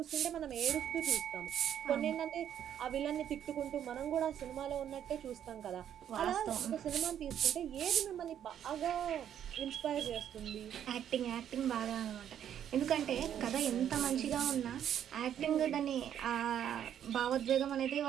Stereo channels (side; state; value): left; quieter; 9.8 dB